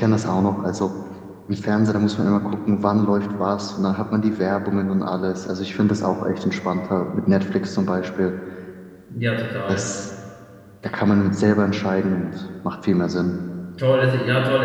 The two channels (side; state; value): both; identical; correlation 1.00